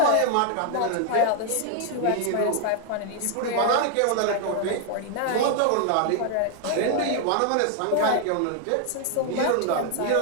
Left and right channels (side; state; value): both; different; correlation 0.00